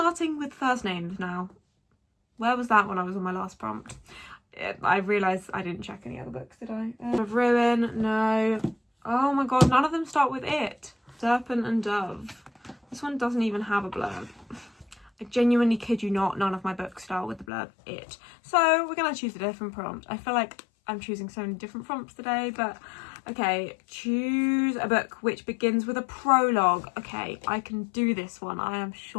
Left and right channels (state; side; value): drops out; right; at 17.4 s